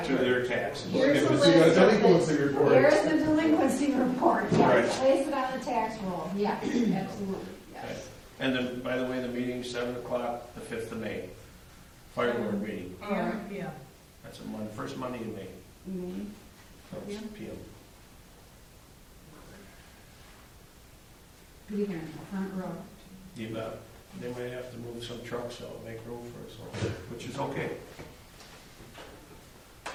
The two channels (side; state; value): both; identical; correlation 1.00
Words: to their taxes. Here's If a it's in a list of delinquency report. Here's the delinquency report, yes, Right. place it on the tax roll, yes, absolutely, yes. And then, by the way, the meeting's 7 o'clock, the 5th of May. Fire board meeting, Yeah. that's first Monday in May, Mhm. so it's PM. Be there in the front row. You bet. They might have to move some trucks out, make room for us, all, which is okay.